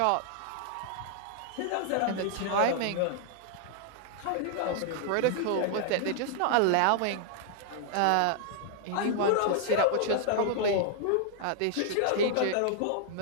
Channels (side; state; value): both; different; correlation -0.01